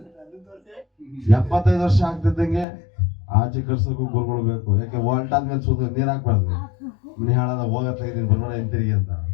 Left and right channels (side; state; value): right; drops out; at 2.7 s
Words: 75 ವರ್ಷ ಆಗ್ತಿದ್ದಂಗೆ ಆಚೆ ಕಳ್ಸೋಕ್ಕೂ ಗುರುಗಳು ಬೇಕು. ಯಾಕೆ ಹೊಲ್ಟಾದ್ಮೇಲೆ ಸೂತ್ರ ನೀರ್ ಹಾಕ್ಬಾರ್ದು, ಮನೆ ಹಾಳಾದ ಹೋಗತ್ತ ಇದೀನಿ ಬರೋಣ ಹಿಂತಿರುಗಿ ಅಂತ.